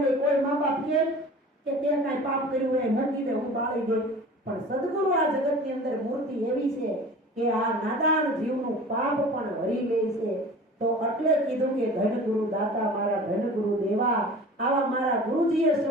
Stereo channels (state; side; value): normal; both; correlation 0.41